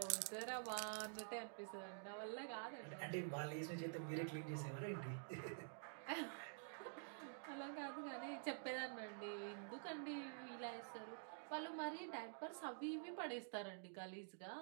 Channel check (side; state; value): left; silent; digital silence